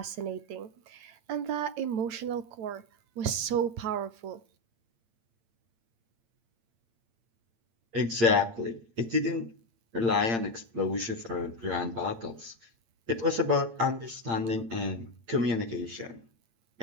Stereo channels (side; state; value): left; late; 8.8 ms